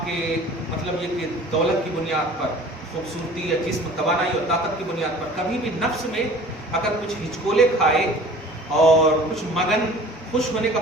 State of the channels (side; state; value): both; normal; correlation 0.46